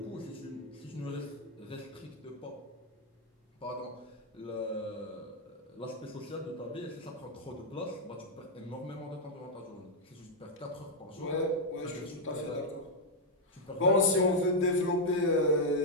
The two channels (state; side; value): normal; both; correlation -0.02